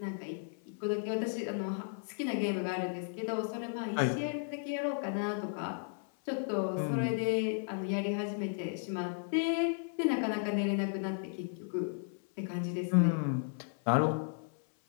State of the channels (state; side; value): silent; right; 55 dB below the other